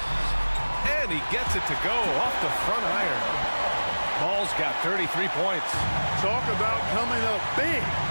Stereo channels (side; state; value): both; inverted; correlation -1.00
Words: And he gets it to go off the front iron. Ball's got 33 points. Talk about coming up big.